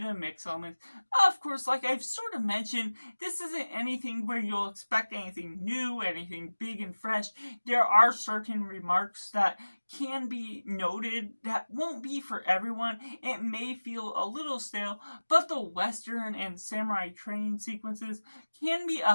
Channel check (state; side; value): inverted; both; correlation -1.00